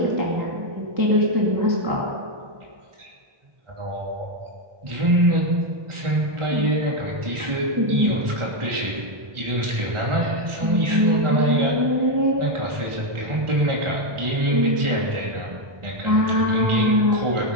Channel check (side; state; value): left; late; 1.2 ms